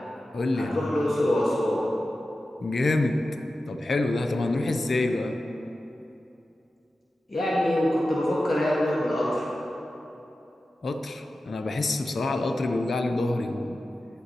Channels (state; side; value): normal; both; correlation 0.93